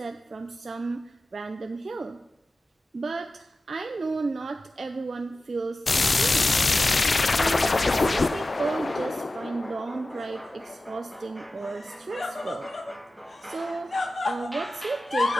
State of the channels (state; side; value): normal; both; correlation 0.94